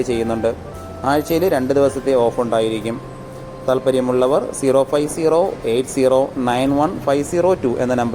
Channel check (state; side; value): identical; both; correlation 1.00